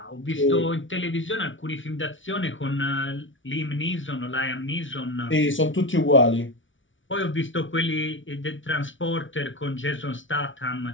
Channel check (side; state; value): right; late; 0.56 ms